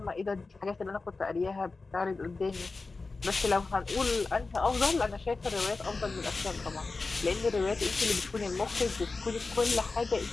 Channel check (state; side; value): quieter; right; 3.8 dB